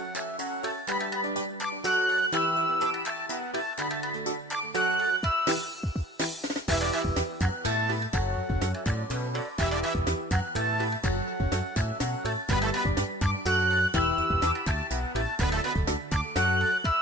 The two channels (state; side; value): normal; both; correlation 0.54